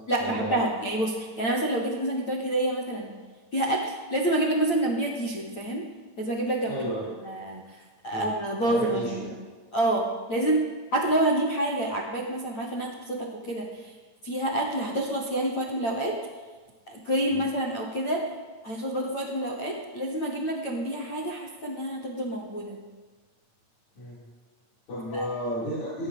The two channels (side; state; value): right; late; 8.8 ms